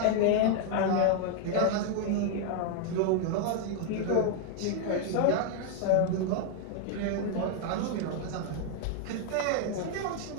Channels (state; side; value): different; both; correlation 0.00